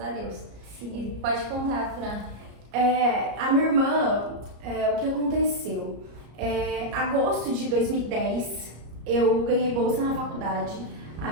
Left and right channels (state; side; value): late; left; 34 ms